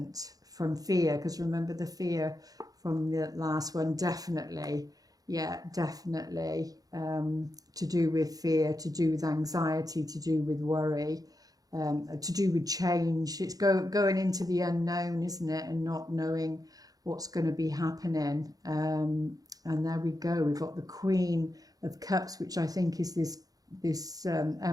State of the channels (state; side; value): late; left; 0.18 ms